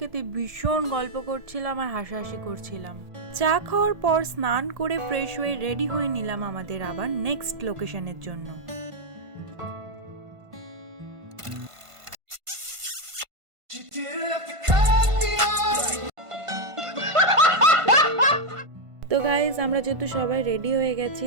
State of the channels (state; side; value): late; left; 1.5 ms